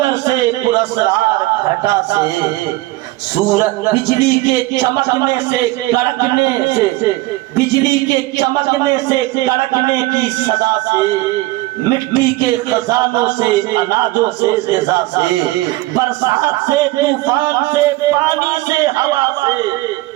سے، پراسرار گھٹا سے، سورج بجلی کے چمکنے سے کڑکنے سے، بجلی کے چمکنے سے کڑکنے کی صدا سے، مٹی کے خزانوں سے، اناجوں سے، غذا سے، برسات سے، طوفان سے، پانی سے، ہوا سے،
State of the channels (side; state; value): left; quieter; 19.0 dB